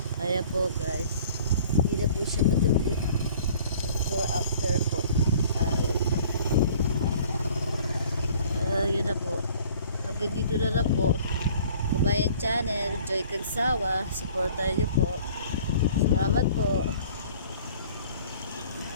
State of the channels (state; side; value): inverted; both; correlation -0.51